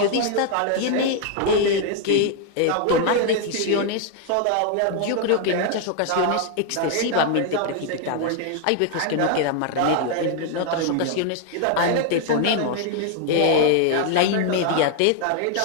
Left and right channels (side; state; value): both; different; correlation 0.00